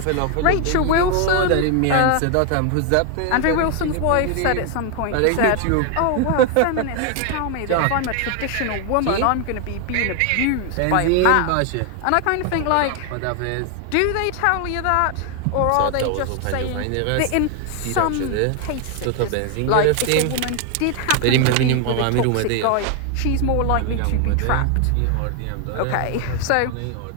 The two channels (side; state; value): both; different; correlation 0.01